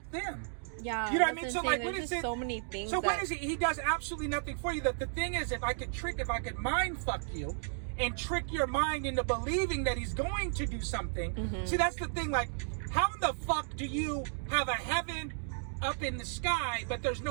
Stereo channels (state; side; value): silent; left; digital silence